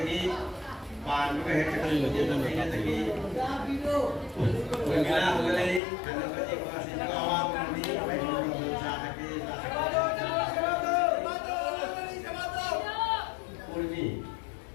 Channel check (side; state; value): right; drops out; at 5.8 s